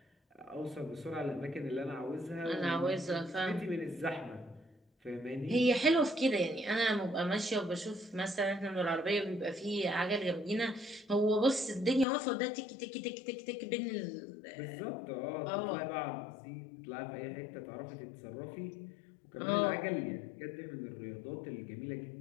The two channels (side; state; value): right; drops out; at 12.1 s